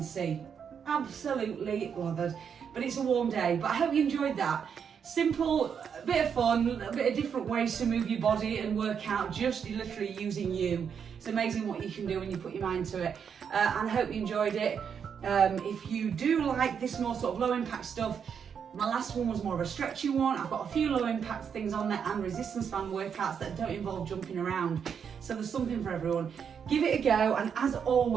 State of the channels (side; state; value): left; quieter; 7.2 dB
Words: see, absolutely lathered. But it's a warm day, but I hope you enjoyed that. Simple, a bit of fun, a bit of different ways to move your body and work out, just literally using you. It's amazing what you can do when you put your mind to it. And I hope you enjoyed it. If you do like this more sort of low impact stuff, my last one was more of a stretchy one. I've got a few low impact things on there and resistance band workouts that don't involve jumping around. So there's something for everyone. Give it a go, and as